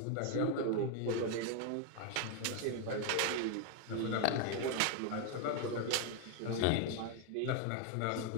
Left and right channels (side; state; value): both; different; correlation 0.00